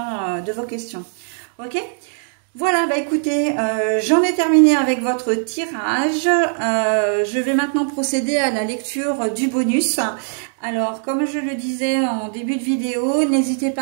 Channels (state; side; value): silent; left; digital silence